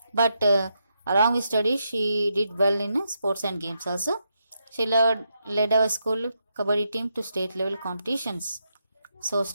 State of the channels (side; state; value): both; inverted; correlation -0.82